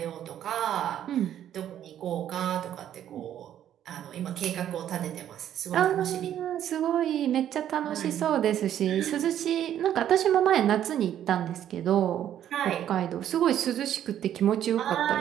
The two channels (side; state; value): left; quieter; 10.8 dB